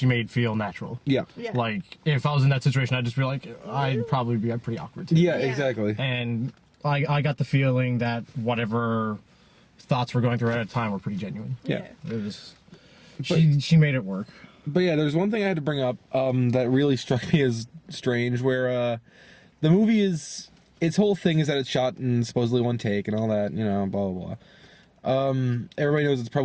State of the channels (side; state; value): both; identical; correlation 1.00